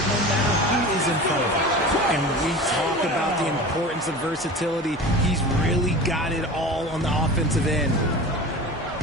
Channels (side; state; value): both; normal; correlation 0.34